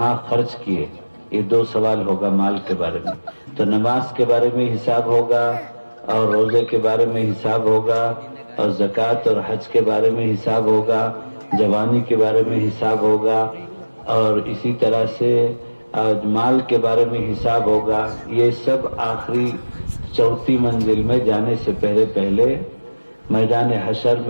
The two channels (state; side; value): inverted; both; correlation -1.00